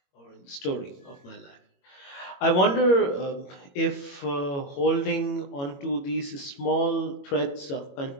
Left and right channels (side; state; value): right; late; 21 ms